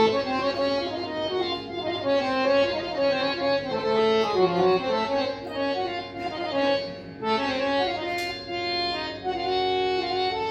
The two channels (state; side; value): identical; both; correlation 1.00